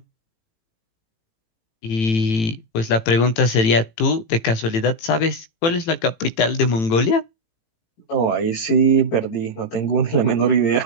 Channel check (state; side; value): late; right; 18 ms